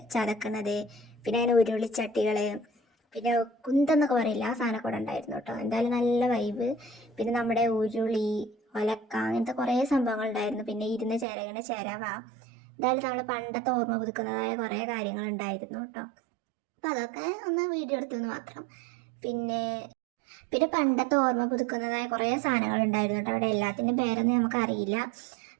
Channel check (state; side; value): drops out; left; at 11.2 s